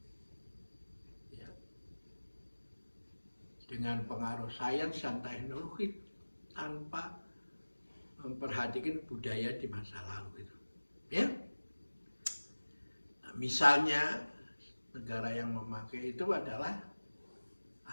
Ya. Dengan pengaruh sains dan teknologi tanpa memperhatikan budaya di masa lalu itu. Ya. Nah, misalnya negara yang memakai itu adalah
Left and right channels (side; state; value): both; inverted; correlation -1.00